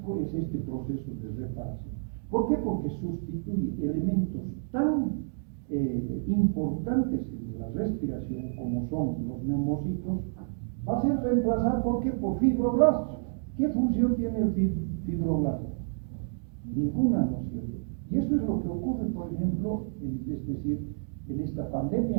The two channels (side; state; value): left; silent; digital silence